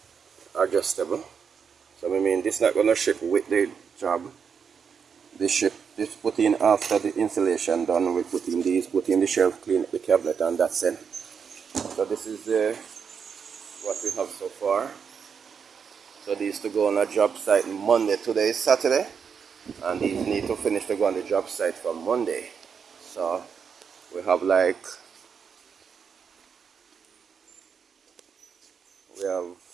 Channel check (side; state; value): left; quieter; 6.6 dB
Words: adjustable. So I mean, this is not going to ship with the job. This put in after the installation done. We put in these, put in the shelf, clean up the cabinet, and that's it. So this is what we have so far. So these to go on a job site Monday. Today is Saturday, and these need to finish to go on the job site for Monday. So we have like we